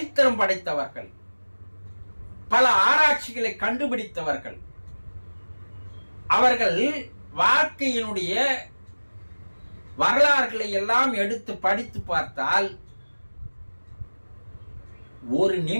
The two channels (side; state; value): both; inverted; correlation -1.00